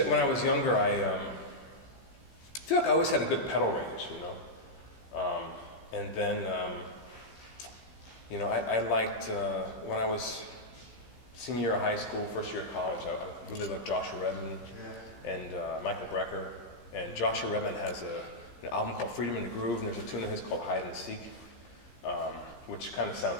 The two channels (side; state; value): right; late; 15 ms